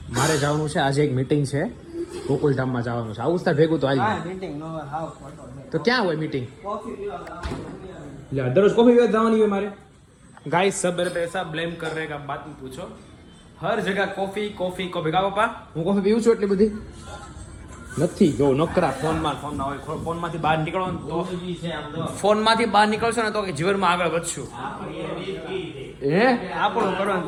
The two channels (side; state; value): both; identical; correlation 1.00